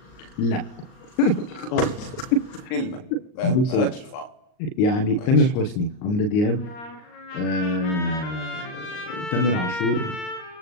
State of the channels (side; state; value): right; late; 38 ms